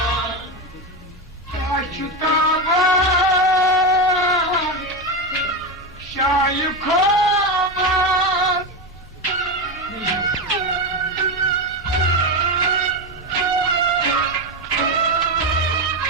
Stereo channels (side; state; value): right; noise; rumble, 21 dB below the sound